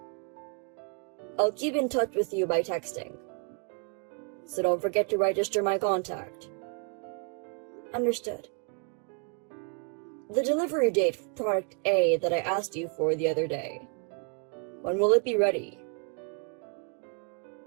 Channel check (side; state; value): left; quieter; 37.0 dB